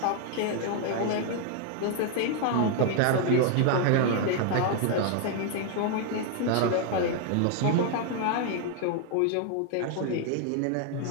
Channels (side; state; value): both; different; correlation 0.00